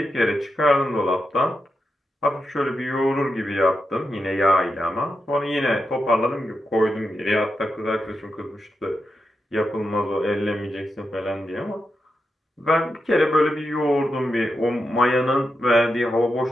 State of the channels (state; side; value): normal; both; correlation 0.87